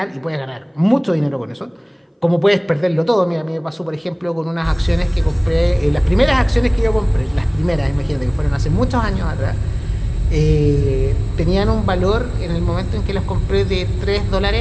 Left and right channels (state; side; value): identical; both; correlation 1.00